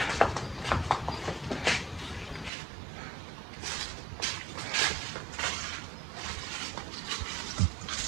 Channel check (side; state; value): left; drops out; at 2.5 s